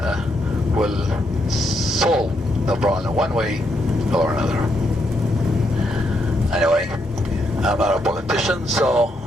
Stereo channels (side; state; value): both; normal; correlation 0.78